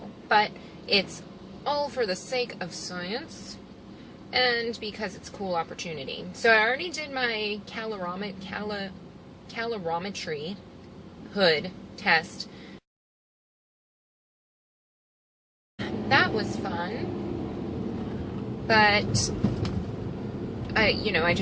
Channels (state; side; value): identical; both; correlation 1.00